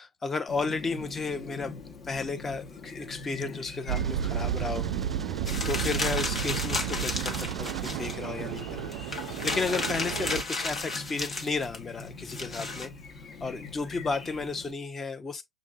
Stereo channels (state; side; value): normal; both; correlation 0.47